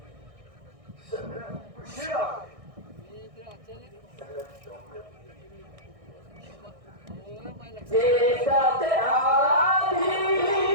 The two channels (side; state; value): left; late; 1.6 ms